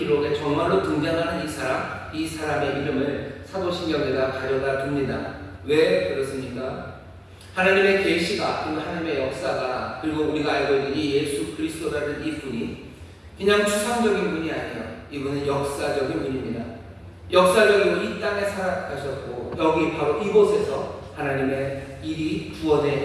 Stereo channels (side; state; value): both; identical; correlation 1.00